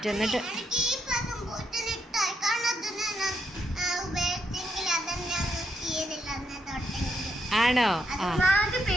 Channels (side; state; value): both; normal; correlation 0.79